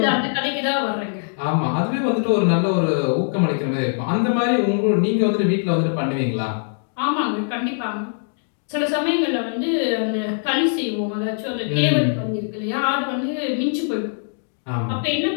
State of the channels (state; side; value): silent; right; digital silence